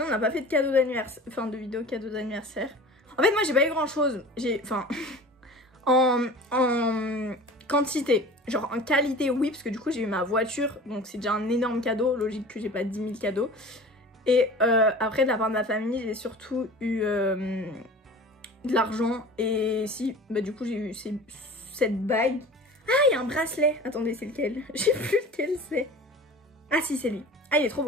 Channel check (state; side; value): normal; both; correlation 0.40